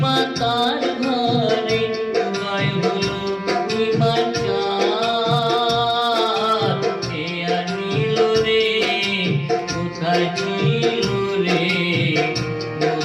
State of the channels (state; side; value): identical; both; correlation 1.00